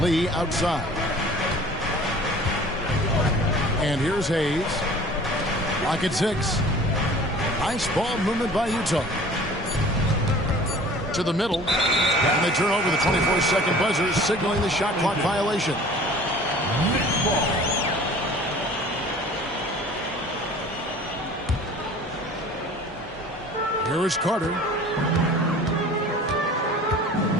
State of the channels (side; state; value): both; normal; correlation 0.46